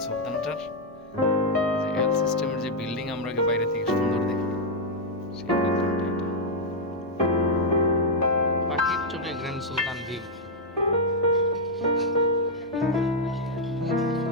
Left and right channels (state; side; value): normal; both; correlation -0.02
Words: সুলতানটার যে এল সিস্টেমের যে বিল্ডিং আমরা বাইরে থেকে সুন্দর দেখি, সেই বিল্ডিংটা এটা। পাখির চোখে গ্র্যান্ড সুলতান ভিউ।